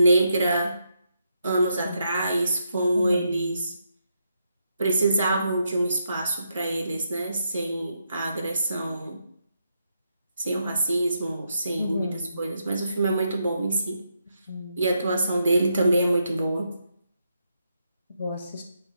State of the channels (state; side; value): inverted; both; correlation -0.81